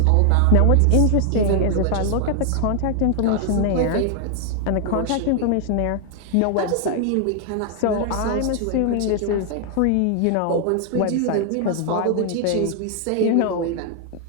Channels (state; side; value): different; both; correlation 0.00